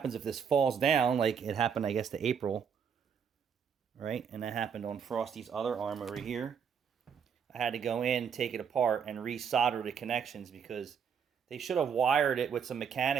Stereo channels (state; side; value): quieter; left; 7.1 dB